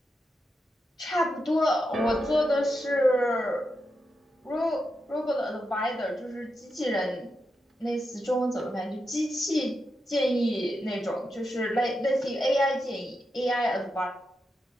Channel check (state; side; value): normal; both; correlation 0.86